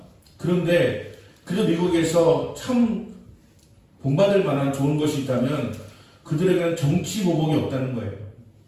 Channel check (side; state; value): both; identical; correlation 1.00